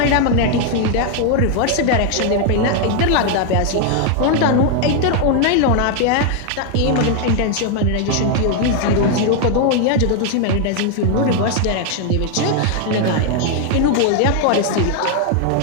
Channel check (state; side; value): different; both; correlation 0.00